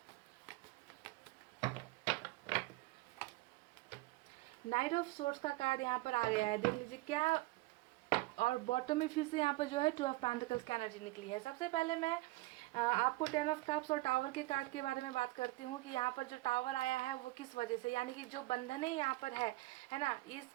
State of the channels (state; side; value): quieter; left; 20.4 dB